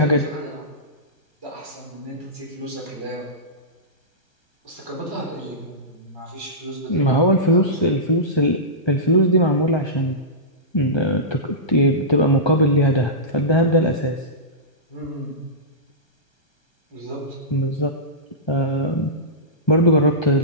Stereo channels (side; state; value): right; late; 1.3 ms